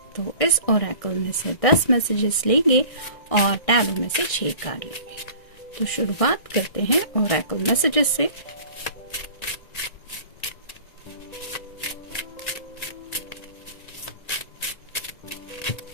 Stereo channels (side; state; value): right; late; 1.6 ms